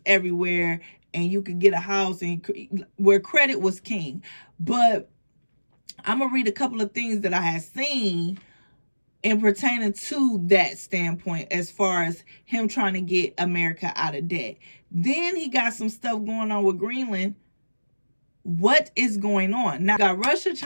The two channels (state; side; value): inverted; both; correlation -1.00